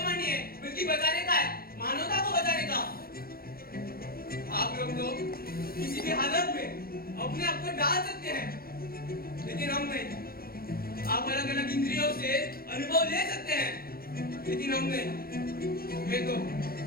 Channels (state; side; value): late; right; 0.44 ms